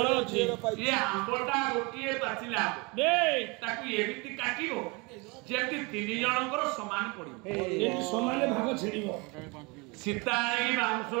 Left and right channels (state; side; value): quieter; left; 28.0 dB